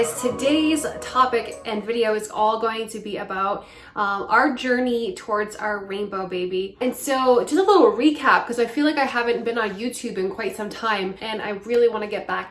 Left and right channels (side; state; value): both; identical; correlation 1.00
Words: Today's topic and video is all going to be about our journey towards our rainbow baby. And so just a little recap, because I feel like I haven't been on YouTube in quite some time and I really want to get